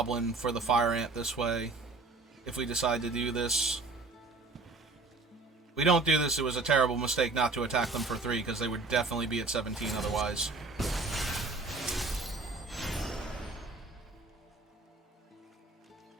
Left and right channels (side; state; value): left; quieter; 3.6 dB